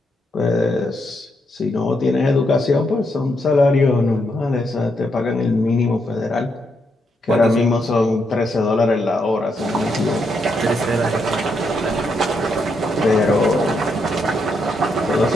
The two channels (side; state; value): both; normal; correlation 0.79